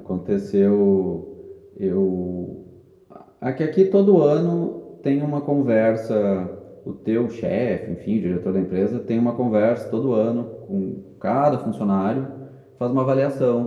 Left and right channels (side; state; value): both; identical; correlation 1.00